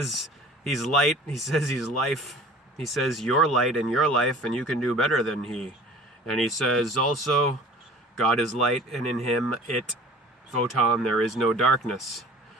he's light. He says he's life. He says you're light and you're life, and you can do better than he. And he says also, God is light, and in him, photon, there is no darkness.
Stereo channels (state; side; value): normal; both; correlation 0.45